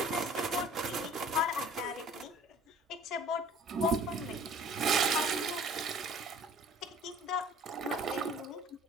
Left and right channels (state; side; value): normal; both; correlation 0.51